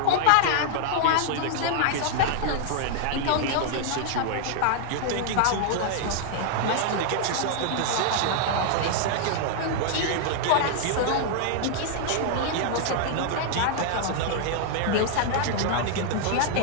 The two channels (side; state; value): both; different; correlation -0.01